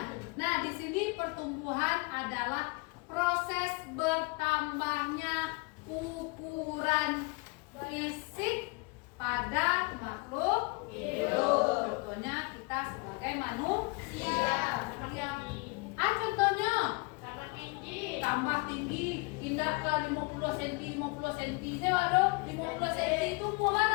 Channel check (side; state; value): right; quieter; 27.6 dB